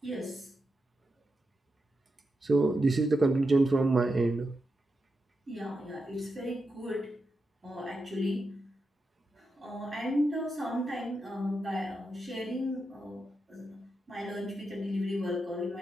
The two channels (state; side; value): normal; both; correlation 0.87